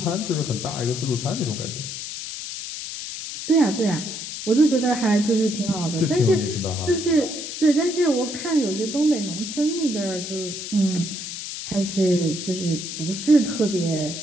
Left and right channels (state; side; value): noise; left; hiss, 7 dB below the sound